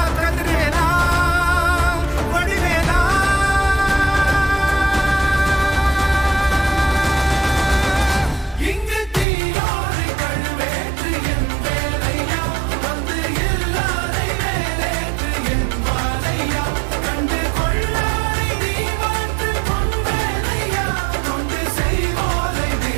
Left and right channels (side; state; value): left; drops out; at 9.2 s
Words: கதிர்வேலா வடிவேலா, இங்கு தீயோரை கழுவேற்று என் வேலையா, வந்து எல்லாரை வேலேற்று என் வாழையா, கண்டு கொள்ளாரை நீ மாற்று பொன் வேலையா, கொண்டு செய்வோரை